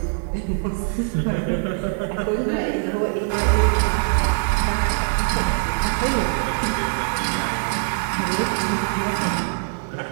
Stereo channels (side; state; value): left; silent; digital silence